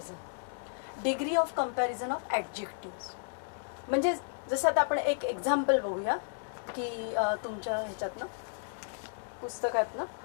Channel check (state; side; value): silent; right; digital silence